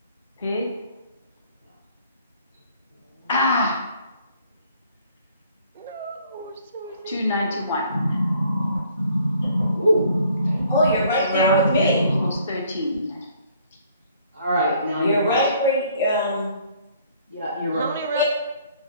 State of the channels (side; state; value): both; inverted; correlation -0.60